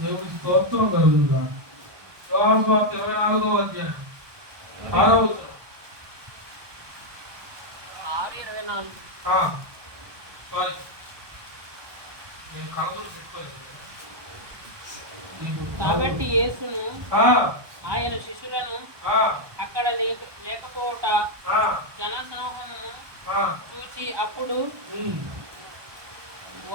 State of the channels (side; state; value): left; late; 1.2 ms